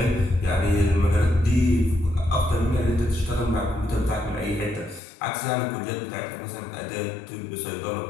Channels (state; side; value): drops out; right; at 5.0 s